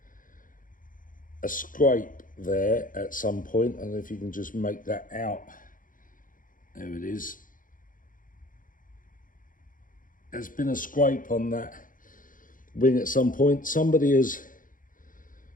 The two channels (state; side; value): late; right; 0.39 ms